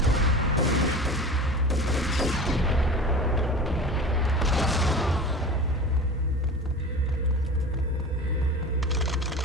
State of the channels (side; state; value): both; normal; correlation 0.34